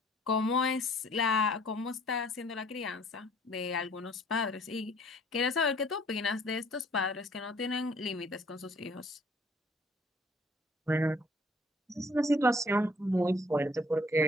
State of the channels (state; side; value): normal; both; correlation 0.58